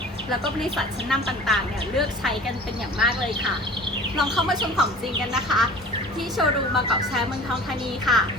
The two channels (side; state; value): both; normal; correlation 0.42